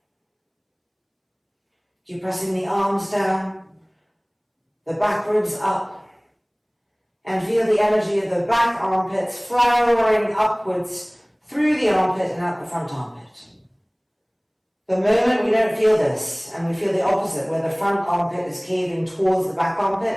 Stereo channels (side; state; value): both; identical; correlation 1.00